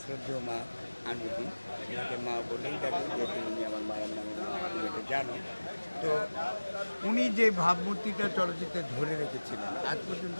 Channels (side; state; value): both; inverted; correlation -1.00